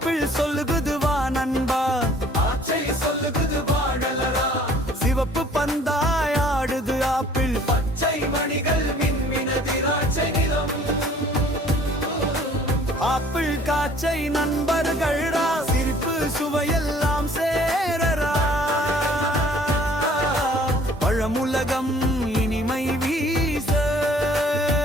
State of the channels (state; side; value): normal; both; correlation 0.55